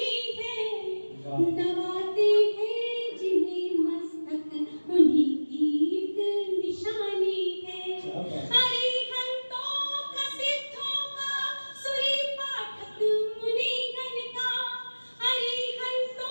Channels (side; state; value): both; inverted; correlation -1.00